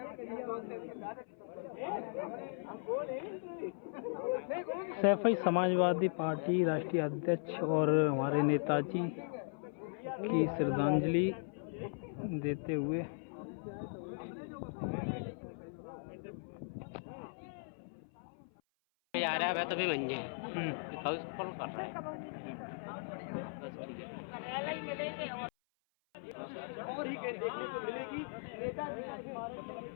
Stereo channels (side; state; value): right; silent; 52 dB below the other